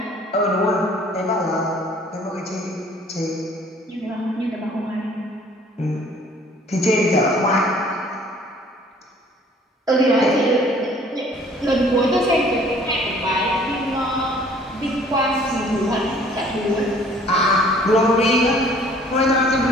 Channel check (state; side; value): normal; both; correlation 0.55